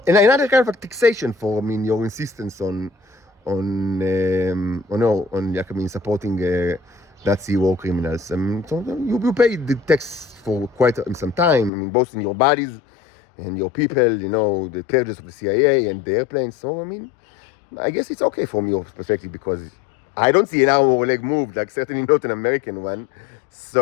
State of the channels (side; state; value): right; drops out; at 11.7 s